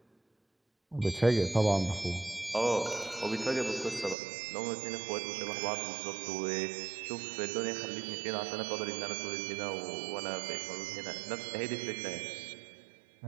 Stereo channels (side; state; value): left; drops out; at 4.2 s